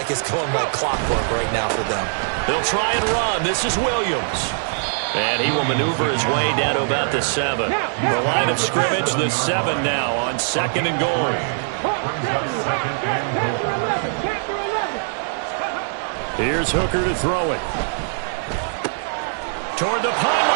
it's going like clockwork right now for them. They'll try and run. This is Williams. And he will maneuver his way down to about the 7. The line of scrimmage, the 7 now on 2nd and goal. Here's Hooker to throw it. Toward the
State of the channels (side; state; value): left; silent; 59 dB below the other